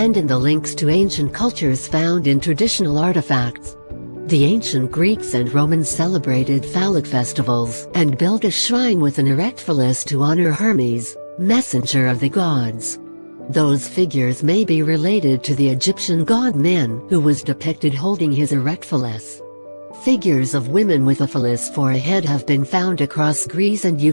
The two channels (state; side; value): inverted; both; correlation -1.00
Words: in the links to ancient cultures found in traditional artifacts. The ancient Greeks and Romans celebrated phallic festivals, and built a shrine with an erect phallus to honor Hermes, messenger of the gods. Those figures may be related to the Egyptian god Min, who was depicted holding his erect phallus. Figures of women with a phallus for a head have been found across Greece and